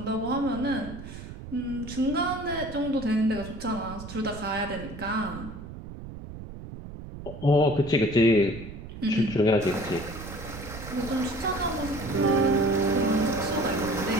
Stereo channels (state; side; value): noise; right; rumble, 12 dB below the sound